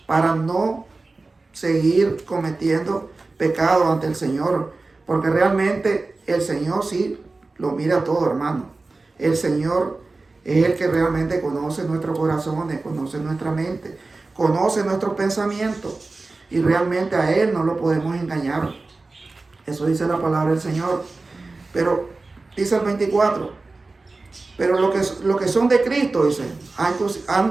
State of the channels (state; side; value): quieter; left; 3.5 dB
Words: para no seguir cometiendo pecado ante el Señor. Porque realmente el Señor sí lo mira todo, hermano. El Señor es el que realmente conoce nuestros corazones, conoce nuestra mente, conoce nuestros pensamientos. Y realmente a Él no lo podemos engañar. Eso dice la palabra del Señor. Pero dice el 24. Pero lo que son de Cristo, dice,